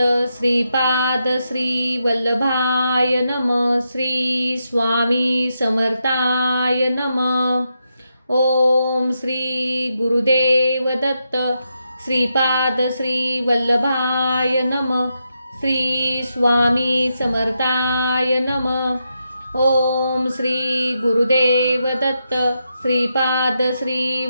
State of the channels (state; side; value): inverted; both; correlation -0.84